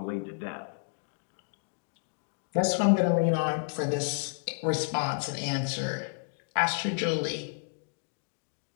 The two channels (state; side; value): silent; right; digital silence